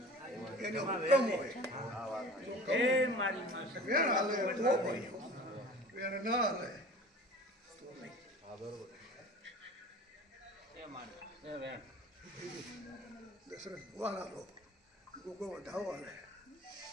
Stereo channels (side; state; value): both; normal; correlation 0.42